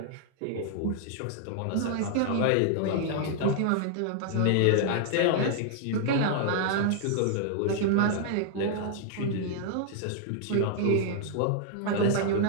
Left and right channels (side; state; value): both; different; correlation 0.00